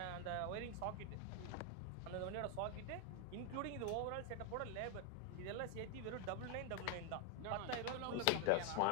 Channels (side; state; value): both; different; correlation 0.01